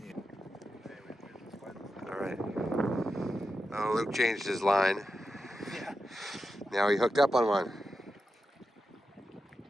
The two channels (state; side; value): normal; both; correlation 0.89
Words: All right. Oh, Luke changed his line. Yeah. Now he hooked up on one.